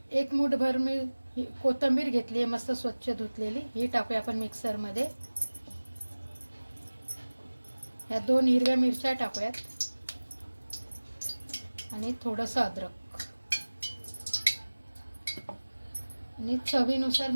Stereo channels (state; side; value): inverted; both; correlation -1.00